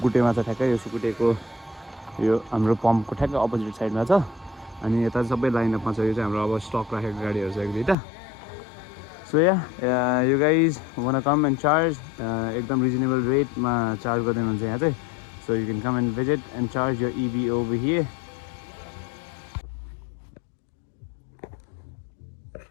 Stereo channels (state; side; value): drops out; right; at 8.0 s